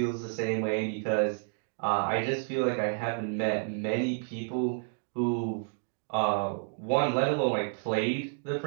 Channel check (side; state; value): left; silent; digital silence